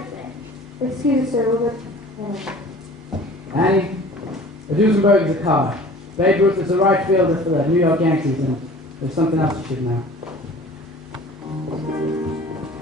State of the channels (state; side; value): normal; both; correlation 0.45